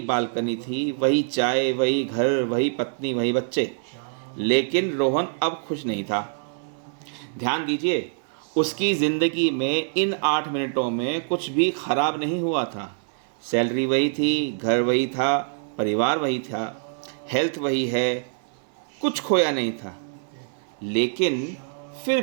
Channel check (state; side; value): silent; left; 62 dB below the other